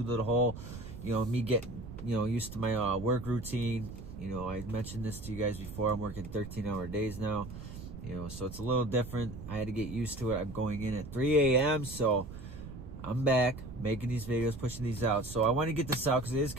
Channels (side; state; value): right; noise; rumble, 12 dB below the sound